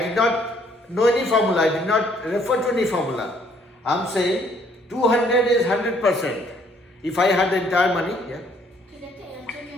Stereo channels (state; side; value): normal; both; correlation 0.64